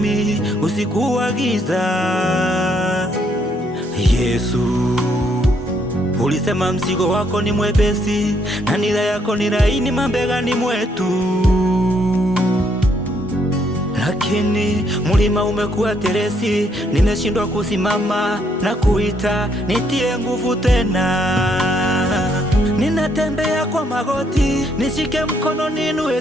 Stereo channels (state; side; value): normal; both; correlation 0.71